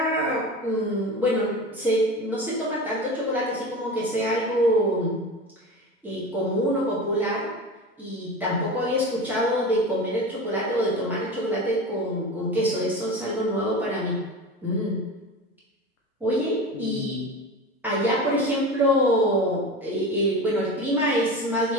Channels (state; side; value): normal; both; correlation 0.29